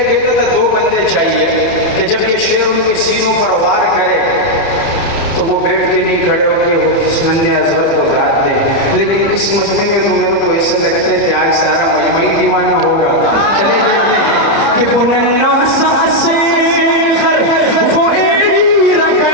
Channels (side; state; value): right; late; 30 ms